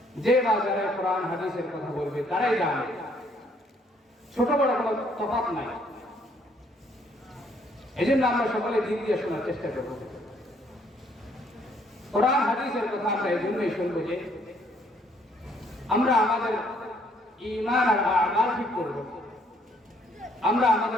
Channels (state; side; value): normal; both; correlation 0.66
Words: যে বা যারা কোরআন হাদিসের কথা বলবে, তারাই জানে ছোট বড় কোনো তফাৎ নাই। এই জন্য আমরা সকলে দিল দিয়ে শোনার চেষ্টা করব। কোরআন হাদিসের কথা আমরা এই জন্যই শুনবো যে আমরা আমাদের ঈমান আর আমাল ঠিক করব, আমরা